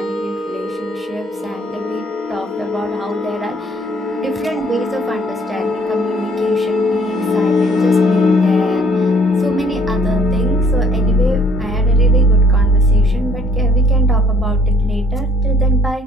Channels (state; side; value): normal; both; correlation 0.61